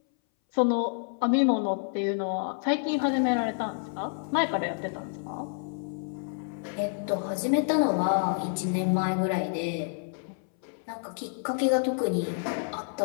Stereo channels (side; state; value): right; silent; 59 dB below the other